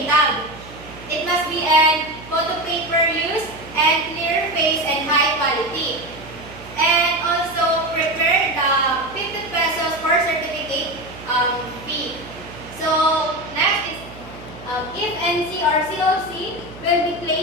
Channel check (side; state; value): right; noise; hum, 17 dB below the sound